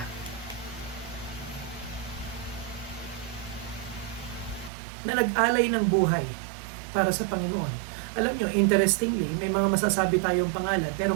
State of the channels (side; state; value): left; drops out; at 4.7 s